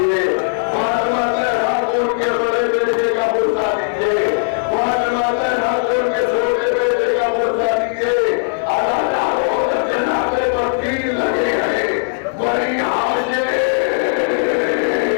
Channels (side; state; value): right; silent; 66 dB below the other